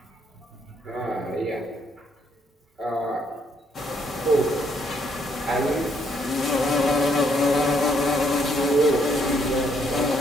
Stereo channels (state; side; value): normal; both; correlation 0.71